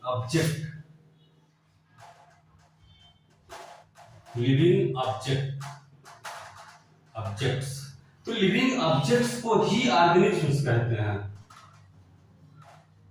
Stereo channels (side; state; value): both; identical; correlation 1.00